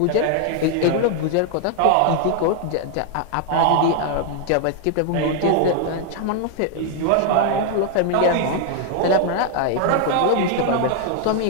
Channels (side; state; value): both; different; correlation 0.00